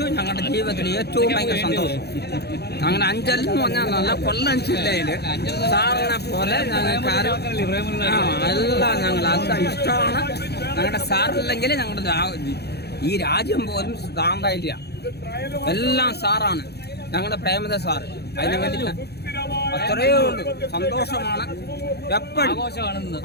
ഞങ്ങളുടെ ജീവിതത്തിൽ ഏറ്റവും ഭയങ്കര സന്തോഷം. അങ്ങനെ അഞ്ചൽ എന്ന് പറഞ്ഞാൽ നല്ല കൊല്ലം ജില്ലയിൽ സാറിനെ പോലെ ഞങ്ങൾക്ക് എല്ലാം ഞങ്ങൾ അത് ഇഷ്ടമാണ്. ഞങ്ങളുടെ സാറില്ലെങ്കിൽ ഞങ്ങളുടെ ഈ രാജ്യം പോലും താണ്ടായില്ല. എല്ലാം സാറാണ്, ഞങ്ങളുടെ പ്രേമദ സാർ. അതിന് വേണ്ടിയിട്ട് അത്രയേ ഉള്ളൂ. സന്തോഷമാണ്, എപ്പോഴും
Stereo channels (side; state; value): right; late; 0.48 ms